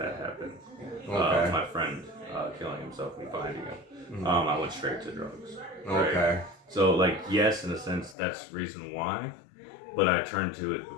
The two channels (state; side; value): drops out; right; at 8.2 s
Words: happened. Okay. My friend killing himself and finding him. I went straight to drugs. Right? Okay. So like yes, in a sense, that's the reason why. But I turned to it